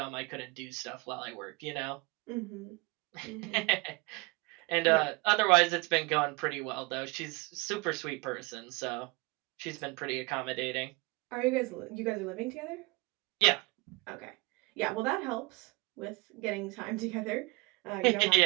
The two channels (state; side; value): quieter; left; 25.6 dB